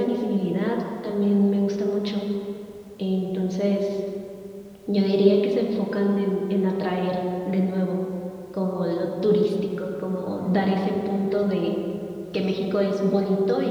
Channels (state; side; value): identical; both; correlation 1.00